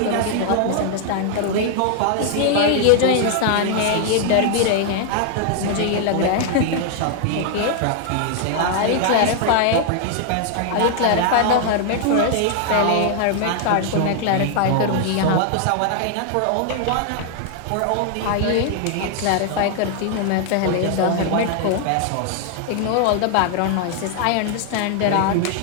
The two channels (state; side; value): different; both; correlation 0.00